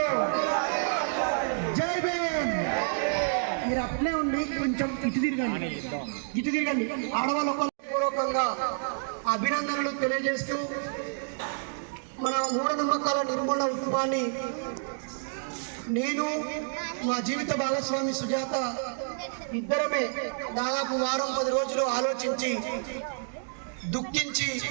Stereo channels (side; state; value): left; silent; digital silence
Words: జై భీమ్. మీరు అట్లే ఉండి కొంచెం ఇటు తిరగండి. ఆడవాళ్ళు పూర్వకంగా అభినందనలు తెలియజేస్తూ మన మూఢనమ్మకాల నిర్మూలన ఉద్యమాన్ని నేను మా జీవిత భాగస్వామి సుజాత ఇద్దరమే దాదాపు వారం 10 రోజులు ఆలోచించి దుఃఖించి